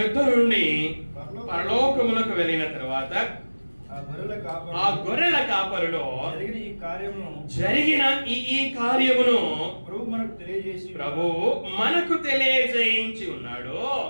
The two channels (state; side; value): inverted; both; correlation -1.00